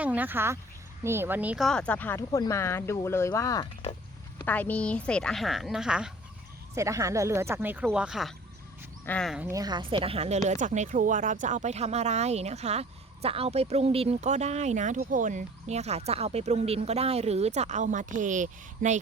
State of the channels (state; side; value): normal; both; correlation 0.48